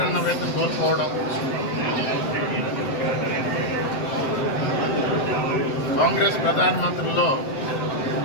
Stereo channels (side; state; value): right; late; 7.7 ms